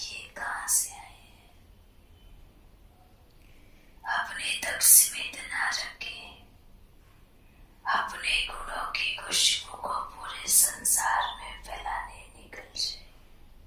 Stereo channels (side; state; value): both; identical; correlation 1.00